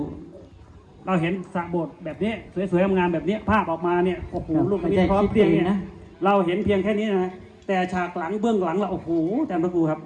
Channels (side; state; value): both; identical; correlation 1.00